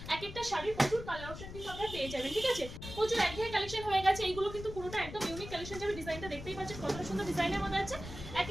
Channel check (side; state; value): left; noise; rumble, 11 dB below the sound